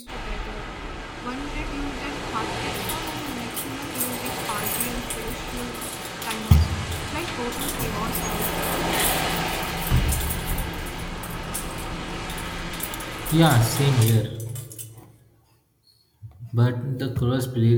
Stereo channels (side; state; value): both; identical; correlation 1.00